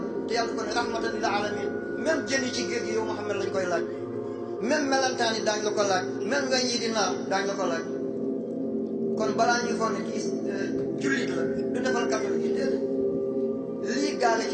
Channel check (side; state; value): both; identical; correlation 1.00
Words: te yàlla ko ne rahmatan lil alamin même jën yi ci géej gi yow Muhammad lañ koy laaj même melantaan yi daañ la ko laaj même weñ yi di naaw daañ la ko laaj kon balaa ñuy foog ne kii jullit la du defal catholique yi déedéet lii gaale